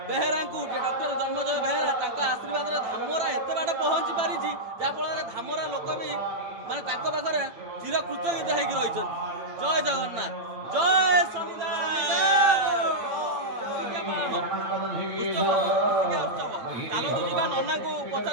ବେହେରାଙ୍କୁ, ଯେ ଡକ୍ଟର ଜନ୍ମଜୟ ବେହେରା ତାଙ୍କ ଆଶୀର୍ବାଦରେ ଧାମରା ଏତେ ବାଟ ପହଞ୍ଚି ପାରିଛି, ଯାହାଫଳରେ ଧାମରା ଲୋକ ବି ମାନେ ତାଙ୍କ ପାଖରେ ଚିରକୃତଜ୍ଞ ହେଇକି ରହିଛନ୍ତି। ଜୟ ଜଗନ୍ନାଥ, ଜୟ ଶନିଦେବ। ଚାଲନ୍ତୁ ଯିବା ନନାଙ୍କୁ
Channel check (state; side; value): late; left; 8.9 ms